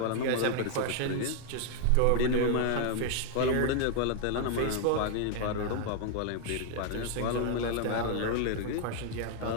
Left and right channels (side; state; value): both; different; correlation 0.00